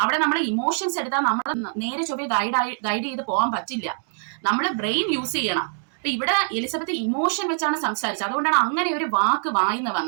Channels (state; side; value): silent; left; digital silence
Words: നമ്മളെ ഇമോഷൻസ് എടുത്താൽ നമ്മൾ നേരെ ചൊവ്വേ ഗൈഡ് ചെയ്ത് പോകാൻ പറ്റില്ല. നമ്മൾ ബ്രെയിൻ യൂസ് ചെയ്യണം. അപ്പൊ ഇവിടെ എലിസബത്ത് ഇമോഷൻ വെച്ചാണ് സംസാരിച്ചത്. അതുകൊണ്ടാണ് അങ്ങനെ ഒരു വാക്ക് വായിന്ന്